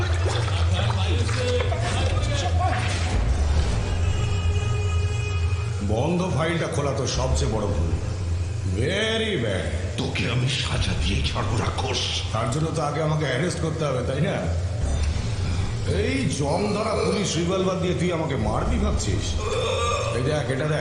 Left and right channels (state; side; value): identical; both; correlation 1.00